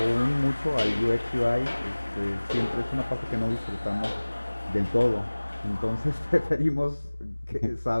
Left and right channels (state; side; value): inverted; both; correlation -1.00